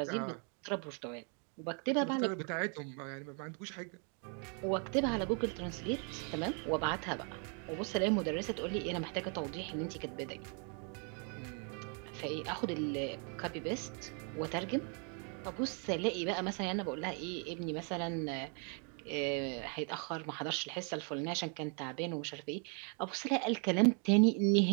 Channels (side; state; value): left; quieter; 39.4 dB